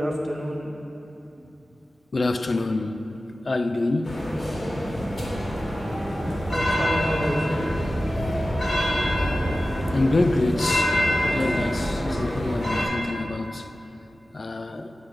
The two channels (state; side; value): normal; both; correlation 0.95